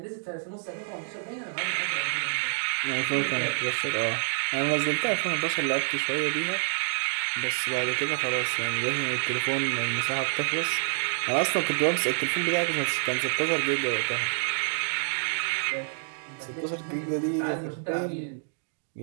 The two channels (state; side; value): silent; left; digital silence